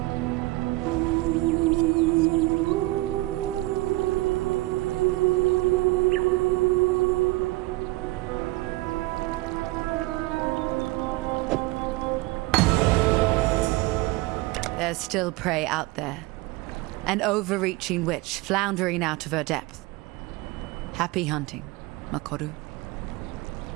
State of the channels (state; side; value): quieter; left; 20.5 dB